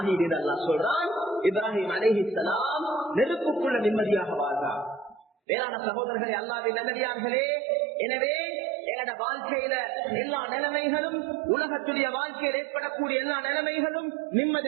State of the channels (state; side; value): drops out; left; at 5.2 s